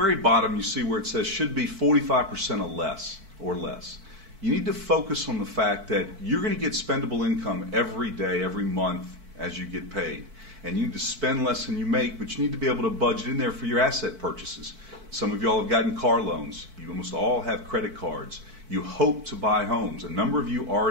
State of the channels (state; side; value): late; left; 4.5 ms